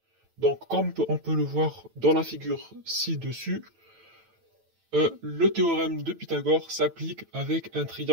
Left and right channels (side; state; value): left; late; 9.0 ms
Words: Donc, comme on peut le voir dans la figure ci-dessus, le théorème de Pythagore s'applique avec un